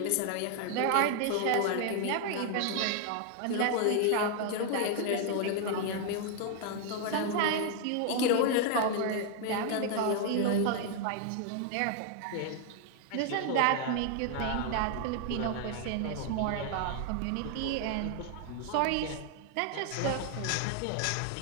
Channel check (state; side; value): different; both; correlation 0.00